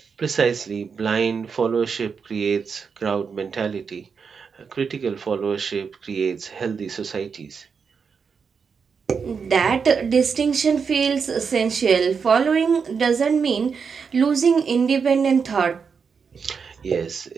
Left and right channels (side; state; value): left; quieter; 5.9 dB